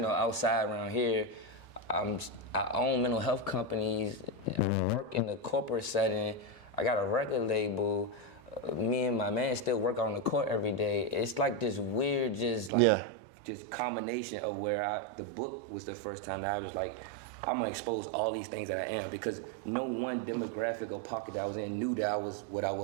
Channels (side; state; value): left; drops out; at 12.7 s